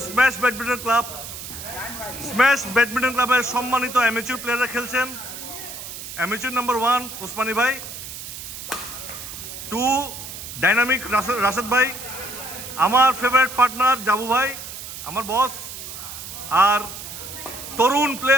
smash badminton club. Smash badminton ক্লাবের সম্মানিত অ্যামেচুর প্লেয়াররা খেলছেন। অ্যামেচুর নাম্বার 1 ওসমানী ভাই, 2 ডাইনামিক রাশেদ ভাই, আমার ফেভারিট পার্টনার জাবু ভাই, আমার বস, আর তরুণ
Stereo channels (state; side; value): noise; right; hiss, 10 dB below the sound